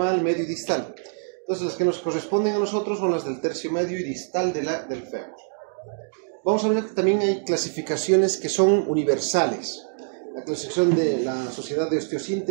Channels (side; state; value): left; silent; digital silence